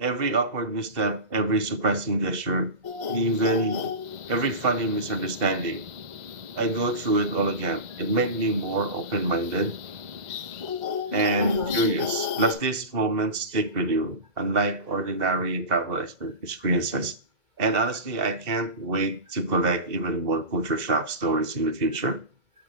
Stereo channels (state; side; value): late; left; 2.0 ms